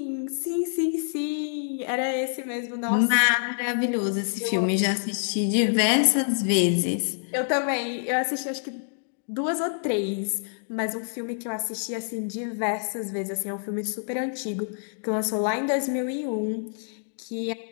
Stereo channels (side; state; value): right; silent; digital silence